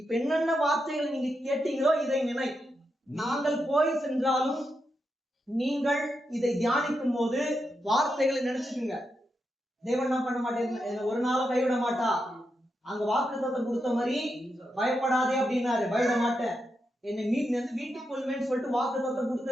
என்னென்ன வார்த்தைகளை நீங்க கேட்டீங்களோ இதை நினை. நாங்கள் போய் சென்றாலும் நீங்கள் இதை தியானிக்கும் போது வார்த்தைகளை நினைச்சுக்குங்க. தேவன் என்ன பண்ண மாட்டேன், ஒரு நாளும் கைவிட மாட்டா. அங்க வாக்குத்தத்தம் கொடுத்த மாதிரி பயப்படாதே அப்படின்னாரு, பயப்பட மாட்டேன், என்னை வீட்டுக்கு கொள்வேன்னு சொல்லிட்டு வாக்குத்தத்தம்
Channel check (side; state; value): both; normal; correlation 0.85